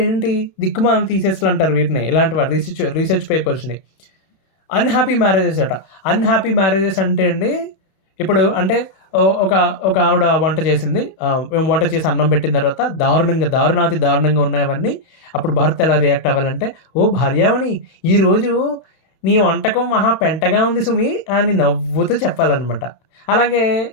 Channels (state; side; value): late; right; 31 ms